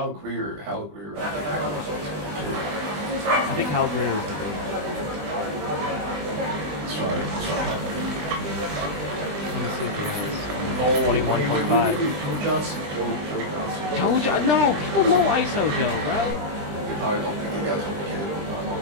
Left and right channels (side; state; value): left; late; 20 ms